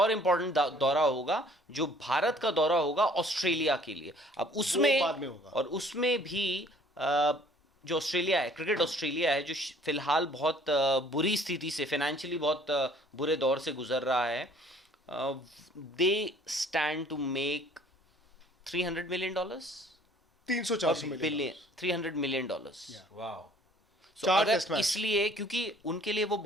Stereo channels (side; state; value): both; normal; correlation 0.55